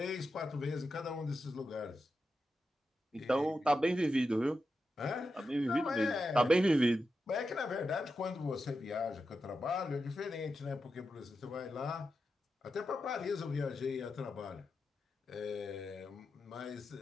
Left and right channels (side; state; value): both; normal; correlation 0.89